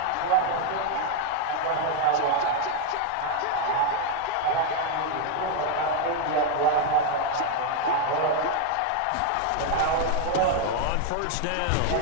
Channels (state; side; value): different; both; correlation 0.01